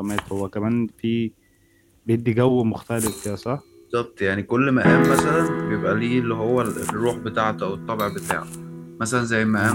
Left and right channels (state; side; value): identical; both; correlation 1.00